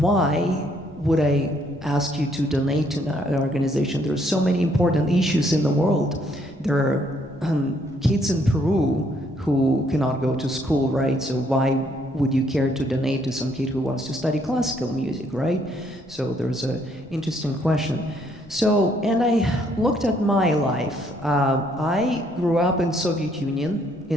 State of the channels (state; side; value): normal; both; correlation 0.68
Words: would I ask you to donate to an organization? There are so many important issues in the world. There are kids in Peru who cannot go to school, right? So why would you care to donate to some kid who wants to study classical music, right? So there's an interesting question. So, and I looked at my life. I grew up in Soviet Union,